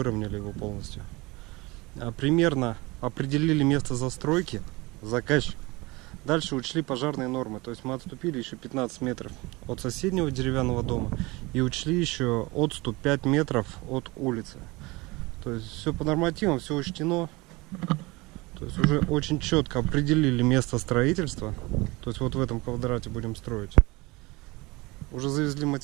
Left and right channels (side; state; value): left; quieter; 23.4 dB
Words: его полностью. Примерно определили место застройки, заказчик. Дальше учли пожарные нормы. То есть мы отступили еще 15 метров от соседнего деревянного дома и учли еще отступ 5 метров от улицы. То есть все по нормативам, все учтено. То есть уже очень четко определили место строительства. То есть вот в этом квадрате будем строить. Уже завезли